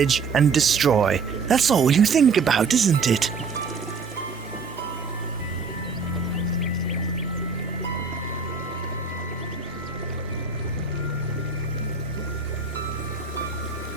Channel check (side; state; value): left; quieter; 4.9 dB